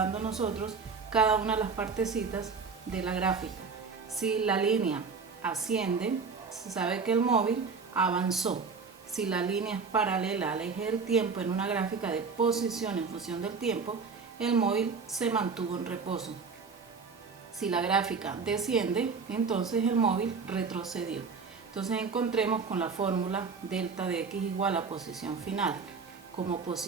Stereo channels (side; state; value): left; quieter; 5.1 dB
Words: a nosotros cada una de las partecitas de la gráfica. Si la línea asciende, se sabe que el móvil avanzó. Si la línea es paralela al eje del tiempo en una gráfica de posición en función del tiempo, el móvil se mantuvo en reposo. Si la gráfica desciende, entonces el móvil retrocedió. Entonces encontremos con la fórmula delta de x igual a posición final. Como